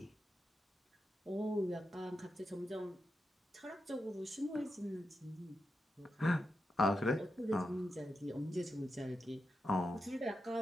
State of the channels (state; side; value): normal; both; correlation 0.87